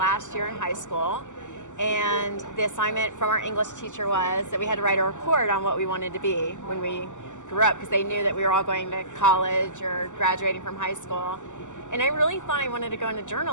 year in high school, and the assignment from our English teacher was that we had to write a report on what we wanted to be when we grew up, because they knew that we were all going to college or graduating from high school. And I really thought I wanted to go into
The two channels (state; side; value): late; right; 0.85 ms